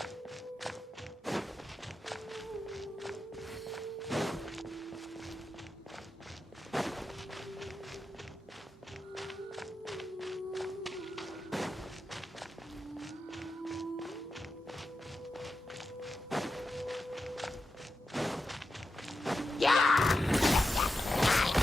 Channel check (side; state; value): both; normal; correlation 0.89